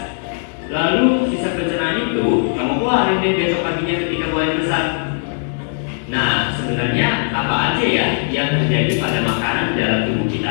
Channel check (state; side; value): silent; right; digital silence